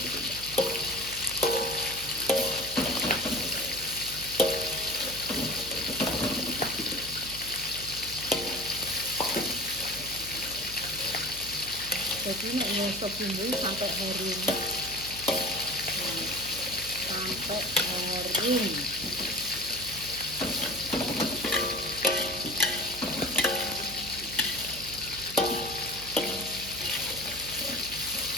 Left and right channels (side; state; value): right; noise; hum, 13 dB below the sound